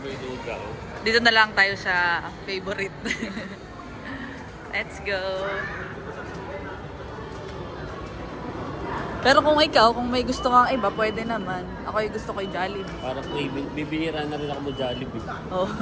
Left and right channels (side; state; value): both; identical; correlation 1.00